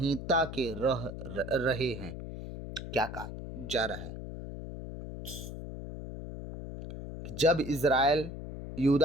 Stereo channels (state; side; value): noise; left; hum, 9 dB below the sound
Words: के रहे हैं। क्या कहा जा रहा है? जब इज़राइल,